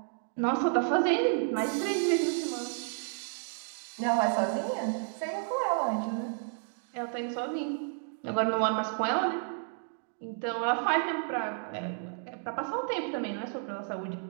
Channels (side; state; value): left; silent; 57 dB below the other